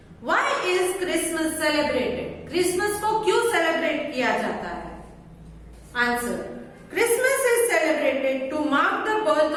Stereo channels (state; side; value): identical; both; correlation 1.00